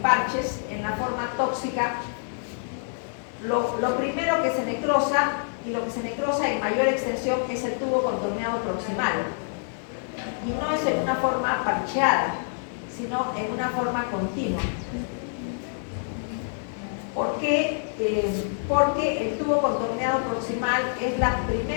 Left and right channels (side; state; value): right; silent; digital silence